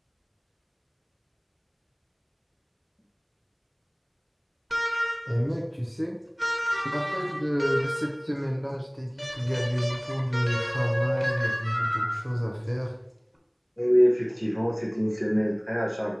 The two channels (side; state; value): both; identical; correlation 1.00